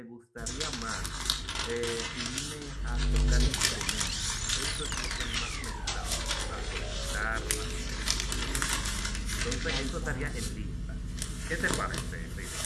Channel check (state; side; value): identical; both; correlation 1.00